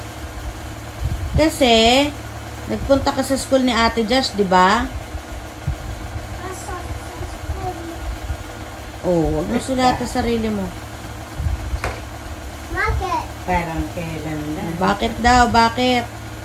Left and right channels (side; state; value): both; identical; correlation 1.00